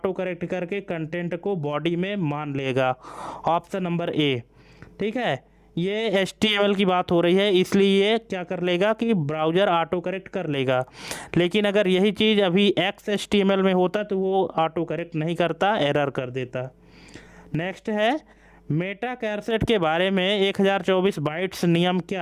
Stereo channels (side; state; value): both; identical; correlation 1.00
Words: करेक्ट करके कंटेंट को बॉडी में मान लेगा, ऑप्शन नंबर ए। ठीक है, ये HTML की बात हो रही है इसलिए ये क्या कर लेगा कि ब्राउज़र ऑटो करेक्ट कर लेगा, लेकिन अगर यही चीज़ अभी XHTML में होता तो वो ऑटो करेक्ट नहीं करता, एरर कर देता। नेक्स्ट है, मेटा कैरसेट के बारे में 1024 बाइट्स नियम